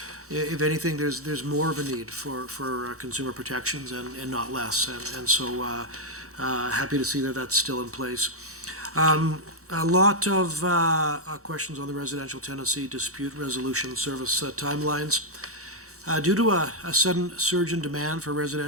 if anything, there's more of a need for consumer protections and not less. And so happy to see that that's still in place. A lot of questions on the residential tenancy dispute resolution service timelines. Due to a sudden surge in demand for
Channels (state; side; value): normal; both; correlation -0.03